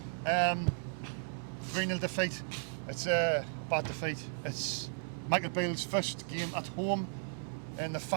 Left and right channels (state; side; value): silent; left; 54 dB below the other